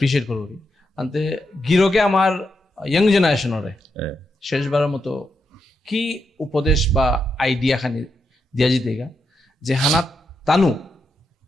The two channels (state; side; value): normal; both; correlation 0.83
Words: করি আনতে গিরকে আমার ইয়ং জেনারেশনরে শেষবাৰৰ মতো কি উপদেশ বা আইডিয়া খানি দিয়া যেতেগা যে হানাত তানু